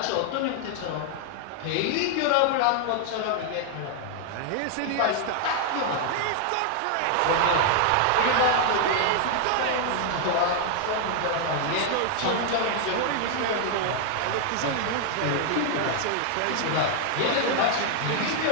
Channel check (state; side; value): different; both; correlation 0.00